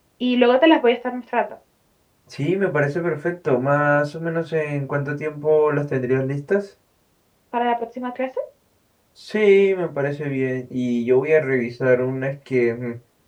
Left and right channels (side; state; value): both; identical; correlation 1.00